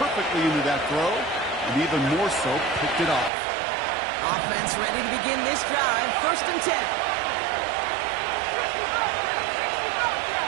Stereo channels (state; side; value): drops out; left; at 3.3 s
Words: into that throw, and even more so, picked it off. Offense ready to begin this drive. First and 10.